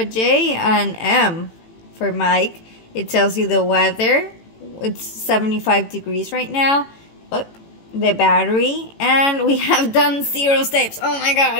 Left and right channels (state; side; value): late; right; 18 ms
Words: J, an M for Mike. It tells you the weather. It's 75 degrees right now. Oh, the battery. And we have done 0 steps. Oh my